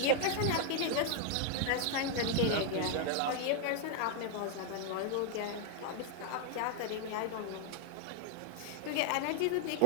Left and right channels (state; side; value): different; both; correlation 0.00